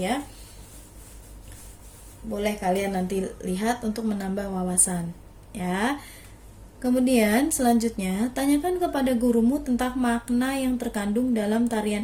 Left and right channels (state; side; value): identical; both; correlation 1.00